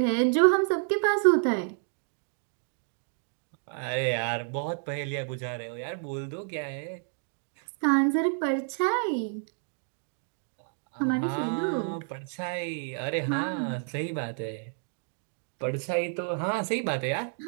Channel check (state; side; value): silent; left; 57 dB below the other